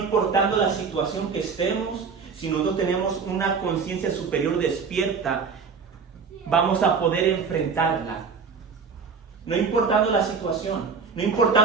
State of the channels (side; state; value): left; quieter; 5.5 dB